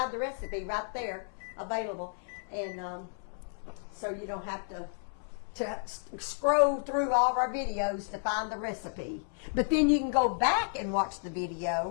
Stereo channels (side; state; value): right; silent; 56 dB below the other